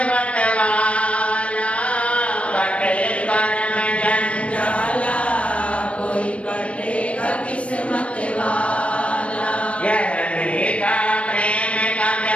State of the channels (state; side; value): late; right; 0.062 ms